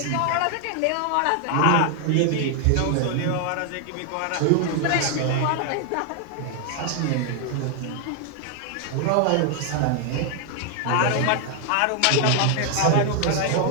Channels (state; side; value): different; both; correlation 0.00